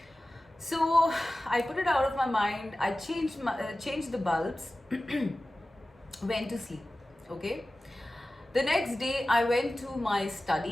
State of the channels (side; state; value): both; normal; correlation 0.96